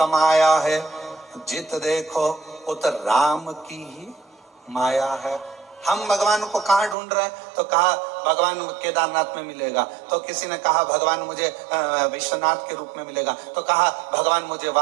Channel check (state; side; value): drops out; left; at 7.0 s